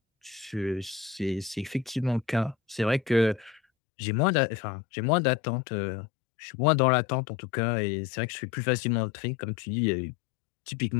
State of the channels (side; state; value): right; drops out; at 3.6 s